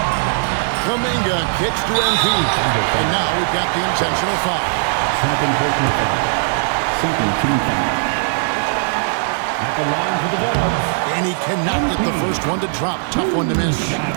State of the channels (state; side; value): silent; left; 67 dB below the other